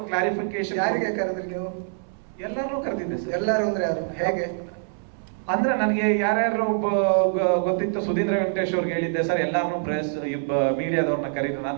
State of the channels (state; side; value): silent; left; 62 dB below the other